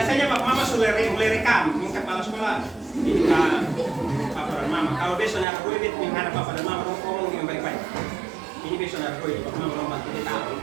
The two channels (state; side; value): drops out; left; at 5.5 s